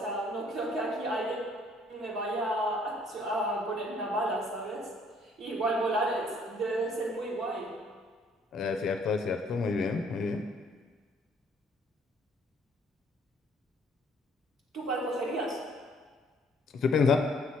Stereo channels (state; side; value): normal; both; correlation 0.62